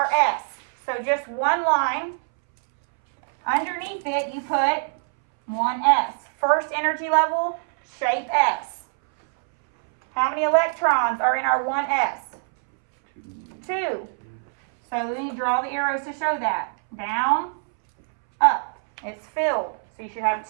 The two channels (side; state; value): left; silent; 63 dB below the other